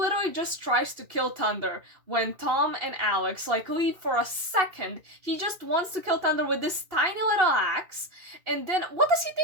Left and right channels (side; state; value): left; late; 2.6 ms